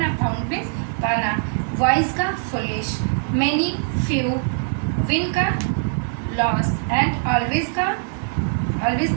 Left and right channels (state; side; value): silent; left; digital silence